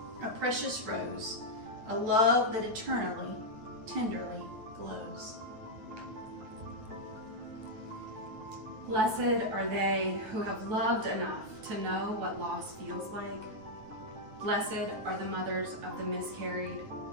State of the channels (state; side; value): late; left; 9.2 ms